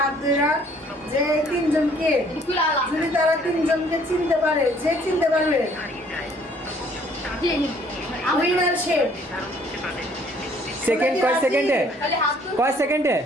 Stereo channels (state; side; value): normal; both; correlation 0.60